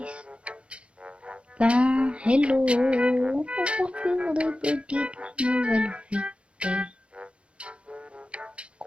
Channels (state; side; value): late; left; 0.059 ms